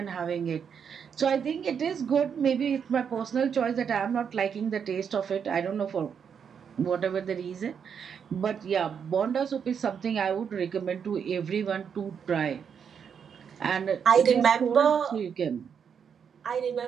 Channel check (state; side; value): quieter; left; 7.2 dB